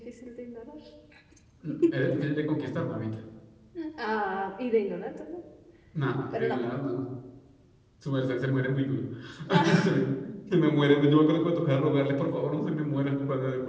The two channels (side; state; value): both; identical; correlation 1.00